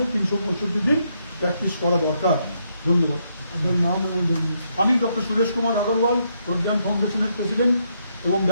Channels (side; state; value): both; inverted; correlation -0.77